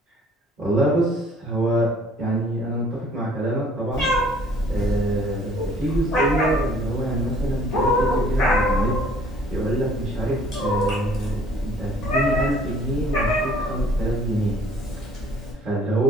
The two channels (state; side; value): normal; both; correlation 0.56